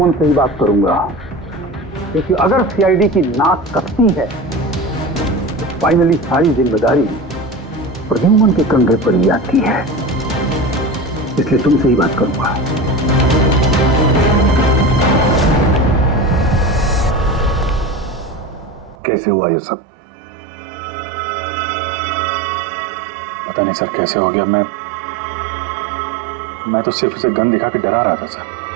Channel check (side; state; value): left; drops out; at 18.9 s